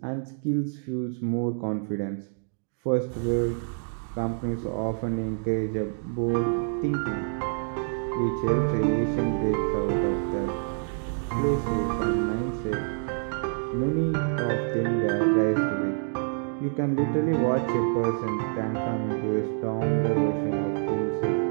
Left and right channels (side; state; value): left; silent; 60 dB below the other